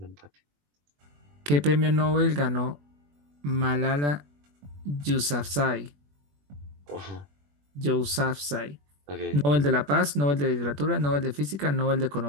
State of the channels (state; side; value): late; left; 21 ms